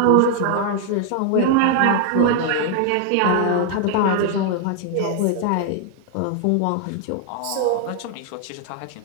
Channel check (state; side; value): different; both; correlation 0.00